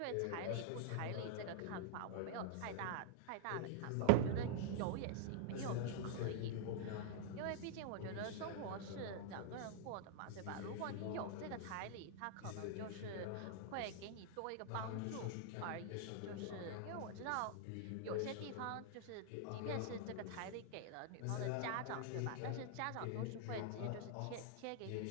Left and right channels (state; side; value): different; both; correlation -0.01